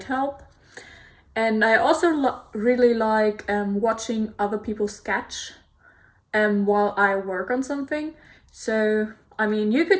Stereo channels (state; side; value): identical; both; correlation 1.00